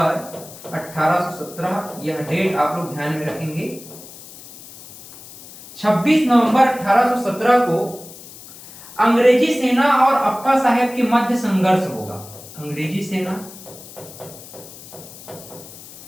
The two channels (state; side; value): noise; left; hiss, 17 dB below the sound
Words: 1817, यह डेट आप लोग ध्यान में रखेंगे। 26 नवंबर 1817 को अंग्रेजी सेना और अप्पा साहेब के मध्य संघर्ष होगा। अंग्रेजी सेना,